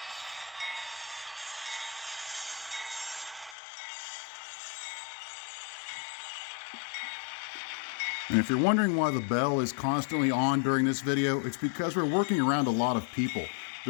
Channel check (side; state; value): right; drops out; at 3.6 s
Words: And if you're wondering why the bell is constantly on during this video, it's because we're working around a lot of people.